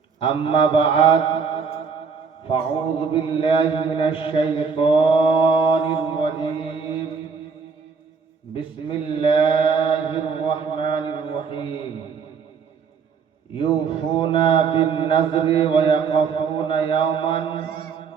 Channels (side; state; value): left; quieter; 5.7 dB